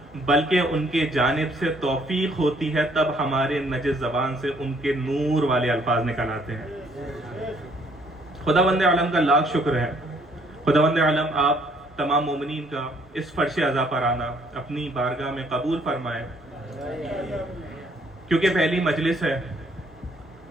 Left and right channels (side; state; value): both; normal; correlation 0.64